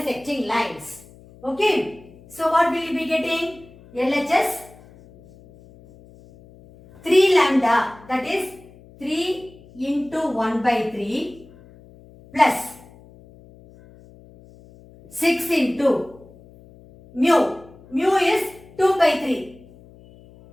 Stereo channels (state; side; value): noise; left; hum, 23 dB below the sound